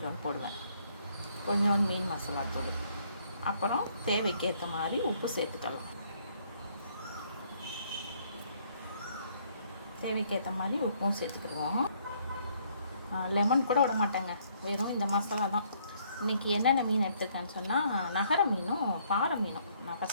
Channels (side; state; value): both; inverted; correlation -0.66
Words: போடுவேன். கொஞ்சோண்டு மீன் மசாலாத்தூள், அப்புறம் தேவைக்கு ஏற்ற மாதிரி உப்பு சேர்த்துக்கலாம். தேவைக்கு ஏற்ற மாதிரி உப்பும் சேர்த்துக்கிடுவோம். லெமன் கூட விட மாட்டேங்க, வெறும் இந்த மசாலா தான். இன்றைக்கி என்னென்ன மீன் எடுத்துருக்கேன்னு சொன்னால், நகர மீனும் பாறை மீனும். நான்